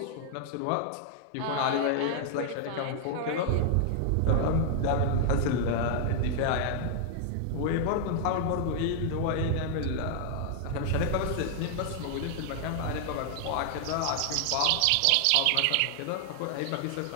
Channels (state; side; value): different; both; correlation -0.01